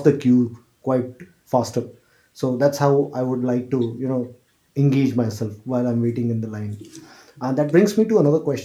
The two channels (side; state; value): both; identical; correlation 1.00